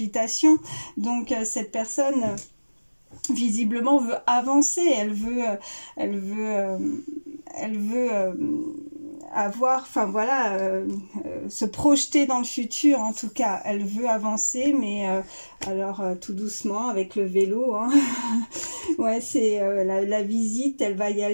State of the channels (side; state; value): both; inverted; correlation -1.00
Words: Donc cette personne visiblement veut avancer, elle veut avoir, enfin voilà, se projeter dans le futur, en tout cas, elle veut avancer, mais alors tout doucement avec le vélo, hein. Ouais, c'est la visite, elle va y